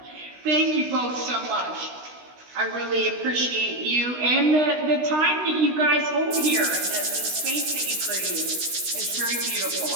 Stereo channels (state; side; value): late; left; 16 ms